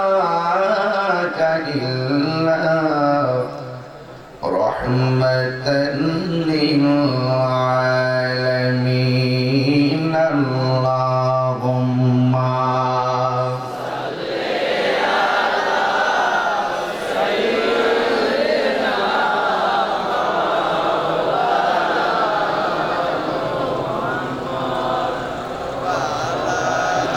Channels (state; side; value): identical; both; correlation 1.00